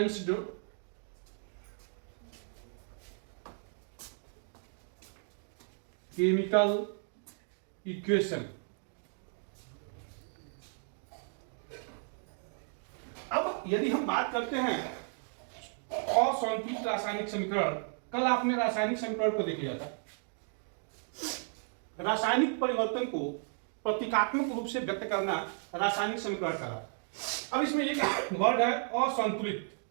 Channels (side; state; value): left; silent; 55 dB below the other